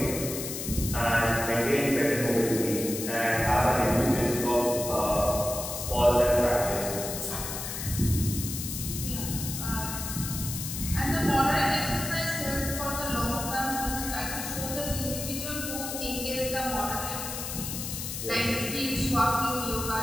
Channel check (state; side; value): noise; left; hiss, 6 dB below the sound